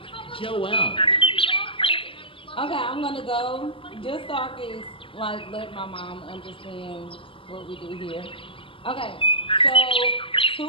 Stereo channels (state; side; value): late; right; 0.25 ms